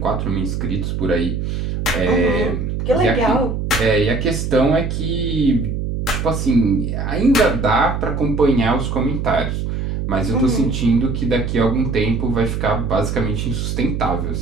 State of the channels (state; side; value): noise; right; hum, 2 dB below the sound